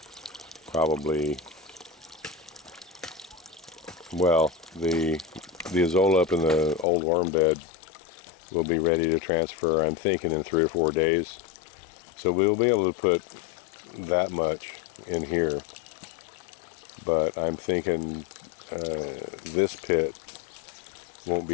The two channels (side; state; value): right; drops out; at 6.9 s